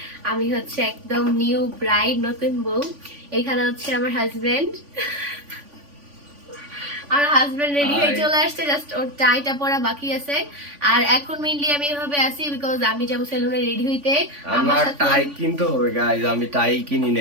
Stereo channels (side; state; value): left; late; 3.5 ms